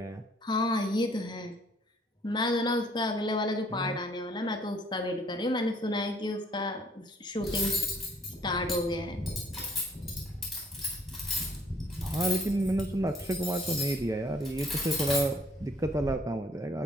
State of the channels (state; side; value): normal; both; correlation 0.61